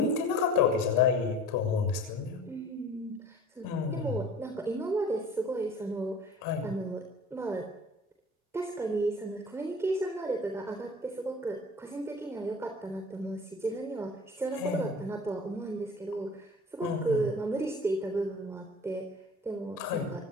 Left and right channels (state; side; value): normal; both; correlation 0.43